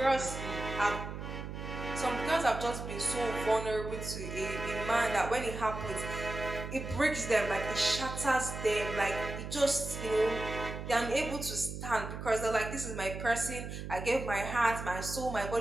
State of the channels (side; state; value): right; noise; hum, 7 dB below the sound